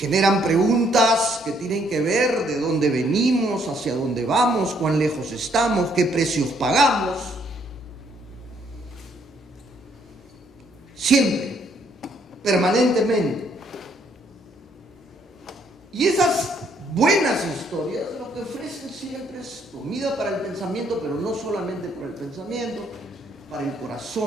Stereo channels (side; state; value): both; normal; correlation 0.68